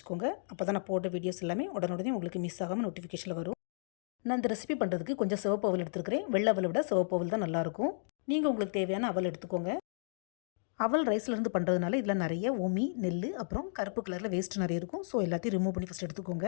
அப்போ தான் நான் போட்ட வீடியோஸ் எல்லாமே உடனே உங்களுக்கு மிஸ் ஆகாமல் நோட்டிஃபிகேஷனில் வரும். நான் இந்த ரெசிபி பண்ணுறதுக்கு கொஞ்சம் சிவப்பு அவல் எடுத்துருக்கிறேன். வெள்ளை அவலை விட சிவப்பு அவல் தான் நல்லாயிருக்கும். நீங்கள் உங்களுக்கு தேவையான அவல் எடுத்துக்கோங்க. அவல் ரைஸ்லேருந்து பண்ணுறதுனால இதில் நிறைய உமி, நெல், அப்புறம் கருப்பு கலரில் வேஸ்ட் நிறைய இருக்கும். ஸோ எல்லாத்தையும் ரிமூவ் பண்ணி ஃபஸ்ட் எடுத்துக்கோங்க.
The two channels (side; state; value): right; silent; digital silence